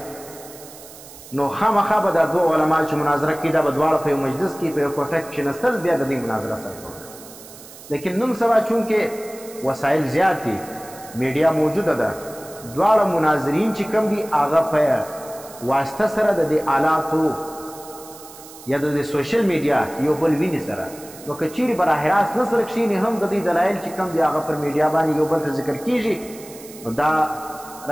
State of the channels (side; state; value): right; noise; hiss, 18 dB below the sound